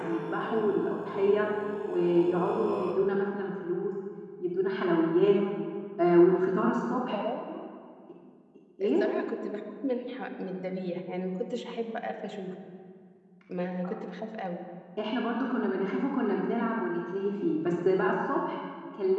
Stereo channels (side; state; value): both; identical; correlation 1.00